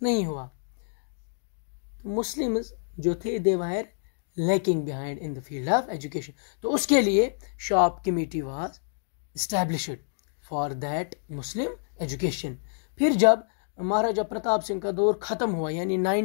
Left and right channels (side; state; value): right; silent; digital silence